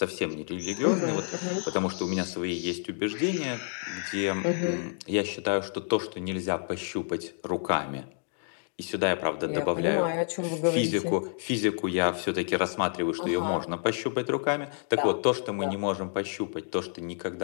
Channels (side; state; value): right; silent; 56 dB below the other